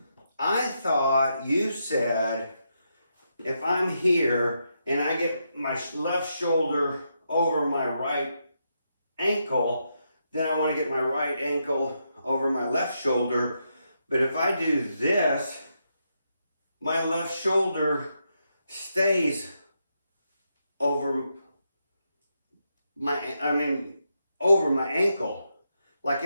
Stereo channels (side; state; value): both; inverted; correlation -0.82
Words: I thought you said if I'm here and I get my left shoulder over my right ankle, then I want to get my right ankle over my left shoulder. But if I do this, my left shoulder stays over over my ankle. Like